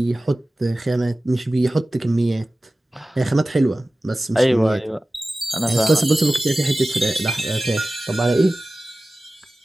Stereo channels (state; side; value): normal; both; correlation 0.96